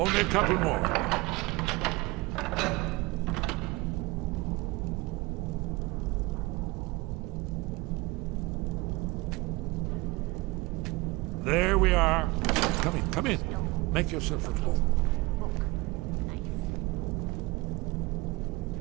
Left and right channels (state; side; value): quieter; left; 23.2 dB